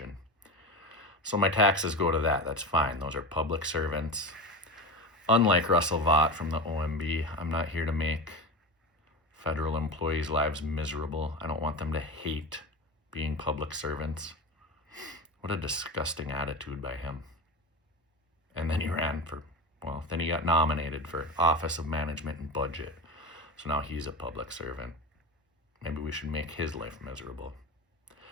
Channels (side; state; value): both; normal; correlation 0.25